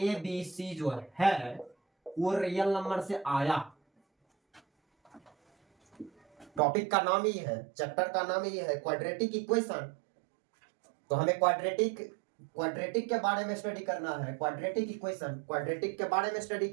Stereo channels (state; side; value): drops out; left; at 6.6 s